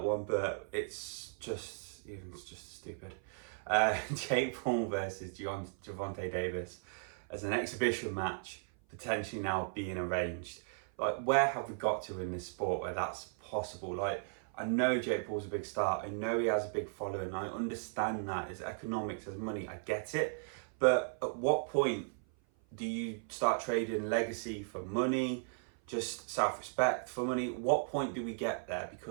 one, but it's just stupid. Jake Paul versus Gervonta Davis as an exhibition match, potentially now being arranged. Like, where have we got to in this sport where that's possible? Like, I know Jake Paul's a big star. I know he has a big following. I understand that. It's economics, it's money. I get it. But at what point do you start trading legacy for money, just self-respect for money? What point do we get there?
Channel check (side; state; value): left; silent; 54 dB below the other